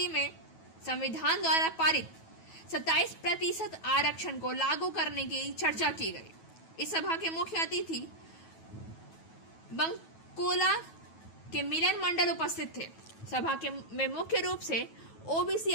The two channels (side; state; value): right; late; 9.2 ms